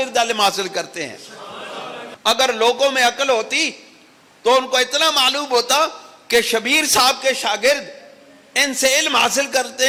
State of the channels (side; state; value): both; identical; correlation 1.00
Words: علم حاصل کرتے ہیں۔ اگر لوگوں میں عقل ہوتی تو ان کو اتنا معلوم ہوتا کہ شبیر صاحب کے شاگرد ان سے علم حاصل